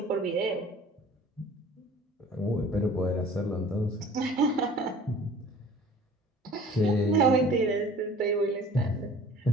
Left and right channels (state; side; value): normal; both; correlation 0.47